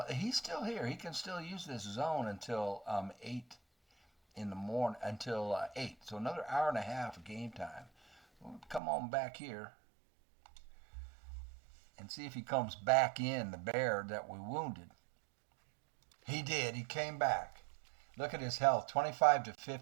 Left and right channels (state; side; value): drops out; left; at 8.8 s